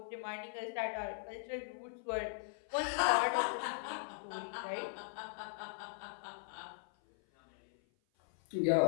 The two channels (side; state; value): right; silent; 52 dB below the other